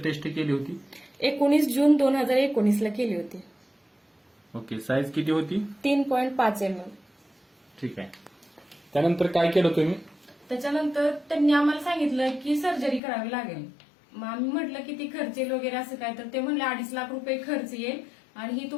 टेस्ट केली होती? 19 जून 2019 ला केली होती. ओके. साईज किती होती? 3.5 mm. ठीक आहे. त्यानंतर काय केलं तुम्ही? त्याच्यानंतर त्यांनी आम्हाला सांगितलं की सर्जरी करावी लागेल. मग आम्ही म्हटलं की ती खर्च येईल वगैरे असं काय, तर ते म्हणले 2.5 लाख रुपये खर्च येईल आणि ही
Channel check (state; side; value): drops out; right; at 13.0 s